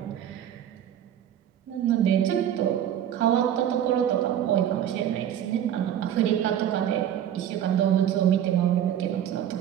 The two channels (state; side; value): quieter; left; 10.3 dB